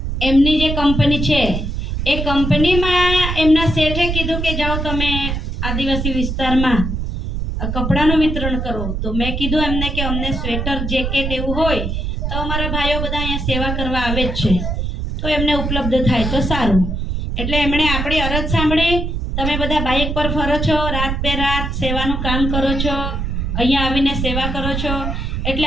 એમની જે કંપની છે એ કંપનીમાં એમના શેઠે કીધું કે જાઓ તમે આદિવાસી વિસ્તારમાં કપડાનું વિતરણ કરો. તો મેં કીધું એમને કે અમને સ્વેટર જેકેટ એવું હોય તો અમારા ભાઈઓ બધા અહીંયા સેવા કરવા આવે જ છે, તો એમને ઉપલબ્ધ થાય તો સારું. એટલે એમણે આપણી અરજ સાંભળી. તમે બધા બાઇક પર ફરો છો, રાત બે રાત સેવાનું કામ કરો છો, અહીંયા આવીને સેવા કરો છો, એટલે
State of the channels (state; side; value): noise; right; rumble, 2 dB below the sound